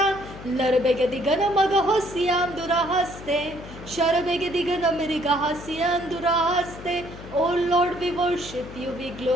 Larabegadigan Magahosian Durahaste, Sharabegadigan Amerigahasian Durahaste. Oh Lord, we worship you, we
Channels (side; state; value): left; noise; hum, 14 dB below the sound